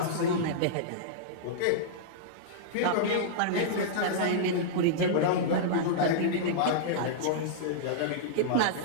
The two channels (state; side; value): different; both; correlation -0.03